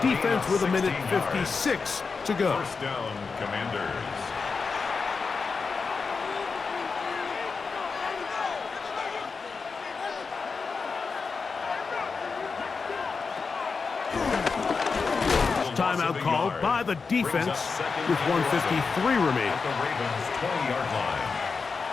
defense with 1:56 to go. First down, Commanders. Timeout called by the defense with 1:53 remaining. At the Ravens' 20-yard line.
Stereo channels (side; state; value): right; quieter; 4.9 dB